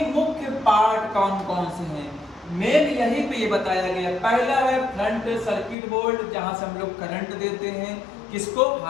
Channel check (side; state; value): right; drops out; at 5.8 s